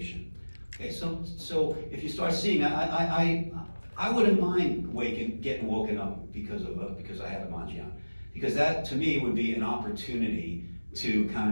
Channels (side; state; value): both; inverted; correlation -1.00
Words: Okay, so if you start seeing, I wouldn't mind getting woken up because I have a Manjian. Because that, to me, would be an opportunity to kind